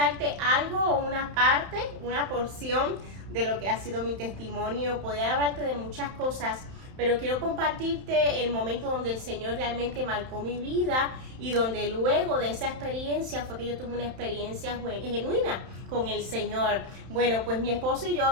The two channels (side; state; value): left; late; 31 ms